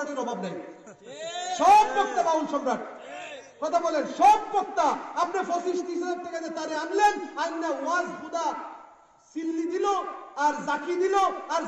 অভাব নাই। সব বক্তা বাউল সম্রাট। কথা বলেন, সব বক্তা। আপনি 25-30 টাকা দিয়ে তারে আনলেন, আইনা ওয়াজ খুদা সিল্লি দিল আর জাকি দিল আর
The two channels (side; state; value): both; identical; correlation 1.00